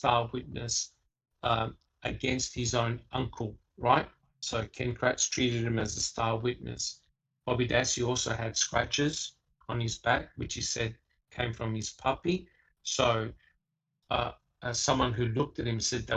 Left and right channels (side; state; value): both; identical; correlation 1.00